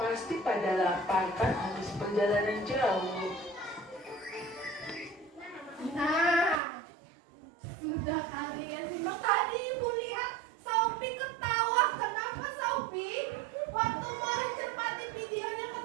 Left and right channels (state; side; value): drops out; left; at 6.6 s